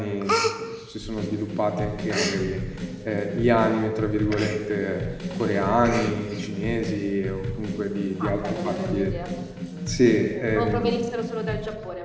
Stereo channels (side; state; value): both; identical; correlation 1.00